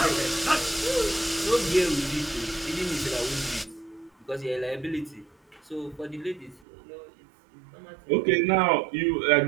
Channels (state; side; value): drops out; left; at 6.6 s